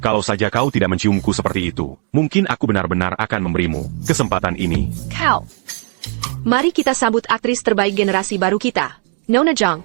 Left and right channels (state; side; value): quieter; left; 38.1 dB